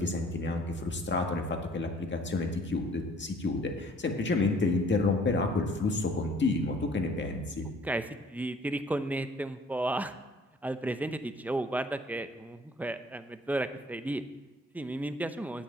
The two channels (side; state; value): both; normal; correlation 0.56